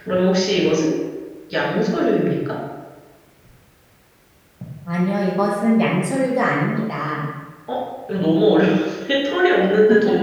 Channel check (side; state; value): both; identical; correlation 1.00